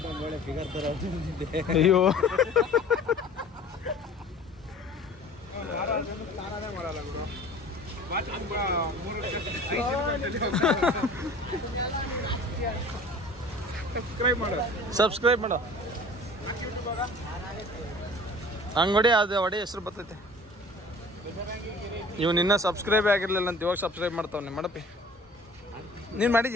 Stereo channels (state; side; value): normal; both; correlation 0.45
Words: ಅಯ್ಯೋ, ಸಬ್ಸ್ಕ್ರೈಬ್ ಮಾಡೋ. ಹಂಗೊಡಿ, ಅದು ಹೊಡಿ ಹೆಸರು ಬರ್ತೈತೆ. ಇವ್ನು ಇನ್ನೂ ಸಬ್ಸ್ಕ್ರೈಬ್ ಆಗಿರ್ಲಿಲ್ಲ ಅಂತ ಇವಾಗ ಸಬ್ಸ್ಕ್ರೈಬ್ ಮಾಡ್ತಾವನೆ. ಮಾಡಪ್ಪಿ ನೀನು